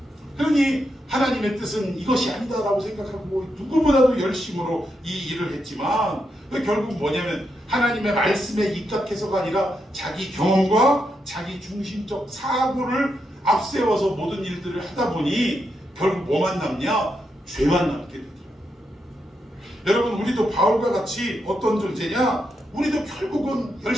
그러니 하나님의 뜻은 이것이 아니다라고 생각하고 누구보다도 열심으로 이 일을 했지만 결국 뭐냐면 하나님의 말씀에 입각해서가 아니라 자기 경험과 자기 중심적 사고를 앞세워서 모든 일들을 하다 보니 결국 뭐만 남냐? 죄만 남게 되더라고요. 여러분, 우리도 바울과 같이 어떤 존재냐? 우리도 결국은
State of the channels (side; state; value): both; normal; correlation 0.83